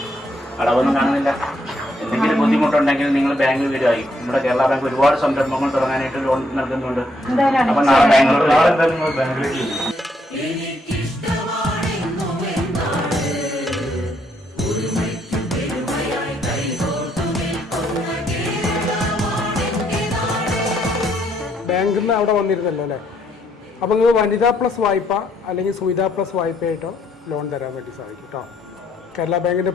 അടവൊന്നും കാണുന്നില്ല. എന്തെങ്കിലും ബുദ്ധിമുട്ടുണ്ടെങ്കിൽ നിങ്ങൾ ബാങ്കിൽ വരുമായി. നമ്മുടെ കേരള ബാങ്ക് ഒരുപാട് സംരംഭങ്ങൾ തുടങ്ങാനായിട്ട് ലോൺ നൽകുന്നുണ്ട്. അപ്പൊ നാളെ ബാങ്കിലേക്ക് ബാങ്കിൽ നിന്ന് അവിടെ വന്നിരുന്നല്ലോ അല്ലേ? അപ്പോൾ നിങ്ങൾ വനിതാ പ്ലസ് വായ്പ അല്ലെങ്കിൽ സുവിധ പ്ലസ് വായ്പയായിട്ടോ ലോൺ തരാൻ വേണ്ടി സാധിക്കും കേട്ടോ. കേരള ബാങ്കിൻ്റെ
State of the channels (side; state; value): both; normal; correlation 0.72